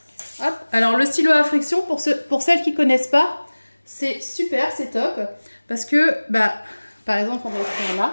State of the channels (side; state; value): both; inverted; correlation -1.00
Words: Hop. Alors, le stylo à friction, pour celles qui ne connaissent pas, c'est super, c'est top. Parce que, par exemple, on va faire